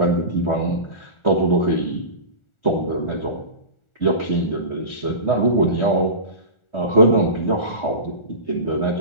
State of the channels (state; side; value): late; right; 1.4 ms